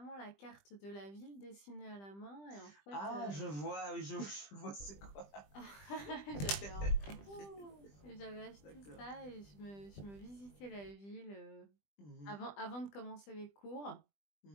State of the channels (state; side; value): late; right; 20 ms